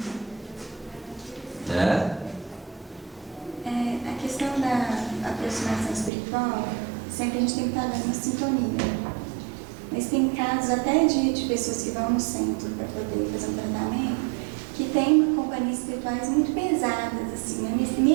Né? A questão da aproximação espiritual, sempre a gente tem que estar dando uma sintonia. Mas tem casos até de pessoas que vão no centro para poder fazer um tratamento, que tem companhias espirituais muito pesadas, assim, né?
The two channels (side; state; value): left; drops out; at 6.1 s